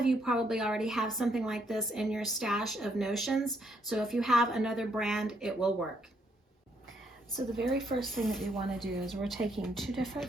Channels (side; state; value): both; normal; correlation 0.72